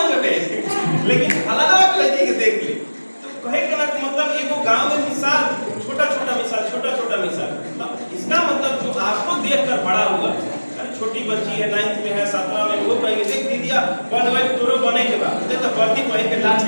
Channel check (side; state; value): both; inverted; correlation -1.00